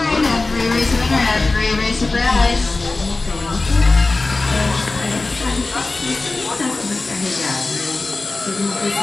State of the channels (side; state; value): right; quieter; 3.4 dB